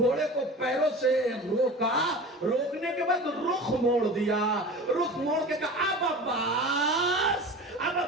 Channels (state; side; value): normal; both; correlation 0.35